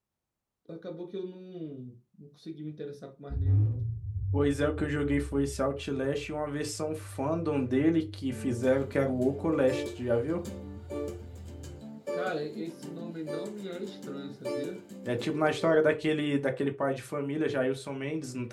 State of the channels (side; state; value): both; identical; correlation 1.00